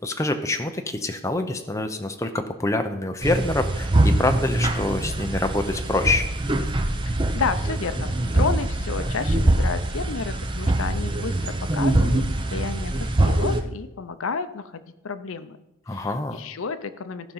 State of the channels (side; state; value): both; normal; correlation 0.66